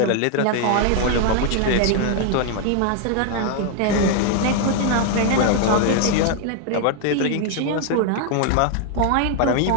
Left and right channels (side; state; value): both; different; correlation 0.00